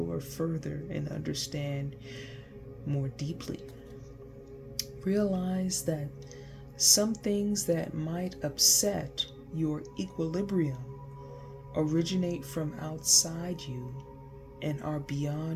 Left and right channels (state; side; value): identical; both; correlation 1.00